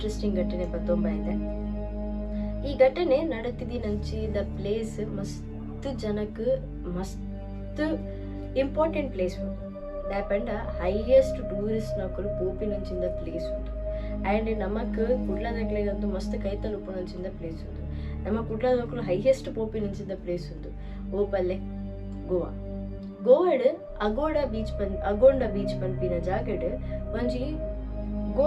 ಘಟನೆ ಬತ್ತೊಂಬ ಇದೆ. ಈ ಘಟನೆ ನಡತಿದಿ ದ ಪ್ಲೇಸ್ ಮಸ್ತ್ ಜನಕ್ಕೆ ಮಸ್ತ್ ಇಂಪಾರ್ಟೆಂಟ್ ಪ್ಲೇಸ್ ಉಂಟು. ದಾಪಂಡ ಹೈಯೆಸ್ಟ್ ಟೂರಿಸ್ಟ್ ನಕಲು ಪೋಪಿ ನಂಚಿಂದ ಪ್ಲೇಸ್ ಉಂಟು. ಆ್ಯಂಡ್ ನಮಕ್ ಕುಡ್ಲದಕ್ಲೆಗಂತೂ ಮಸ್ತ್ ಕೈತಲ್ ಉಪ್ಪು ನಂಚಿಂದ ಪ್ಲೇಸ್ ಉಂಟು. ನಮ್ಮ ಕುಡ್ಲದಕ್ಕಲು ಹೈಯೆಸ್ಟ್ ಪೋಪಿ ನಂಚಿಂದ ಪ್ಲೇಸ್ ಉಂಟು ಓಪಲ್ಲೆ ಗೋವಾ. ಗೋವಾಡ್ ಅಗೋಂಡ ಬೀಚ್ ಪನ್ಪಿನ ಜಾಗಡ್ ಒಂಜಿ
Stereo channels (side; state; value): both; identical; correlation 1.00